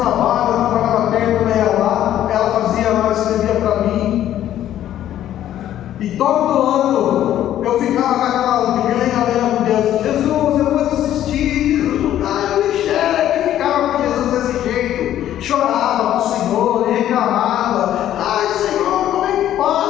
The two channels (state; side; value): quieter; right; 11.9 dB